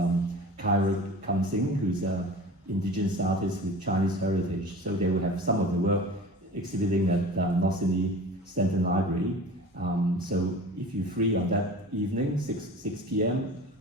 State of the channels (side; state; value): both; normal; correlation 0.38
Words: Kyra Kamsing, who's an indigenous artist with Chinese heritage. So they will have some of the work exhibiting at North Sydney Stanton Library. So if you're free on that evening, 6 p.m.,